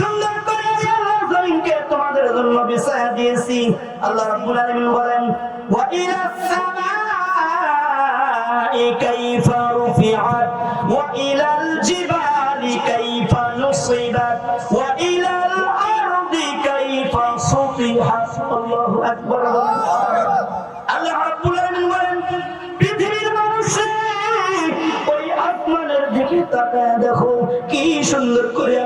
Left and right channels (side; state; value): both; identical; correlation 1.00